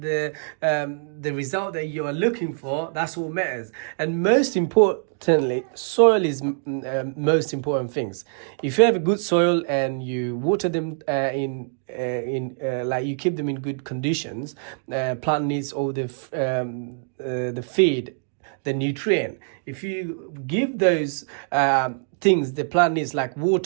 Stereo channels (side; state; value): left; silent; digital silence